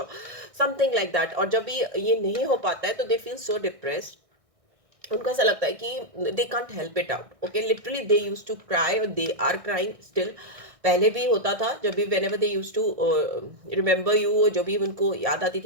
समथिंग लाइक दैट। और जब भी ये नहीं हो पाता है, तो दे फील सो डिप्रेस्ड। उनको ऐसा लगता है कि they can't help it out. Okay, literally they use to cry, और दे आर क्राइंग स्टिल। पहले भी होता था, जब भी whenever they use to remember you, जो भी उनको याद आती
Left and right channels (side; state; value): left; late; 1.6 ms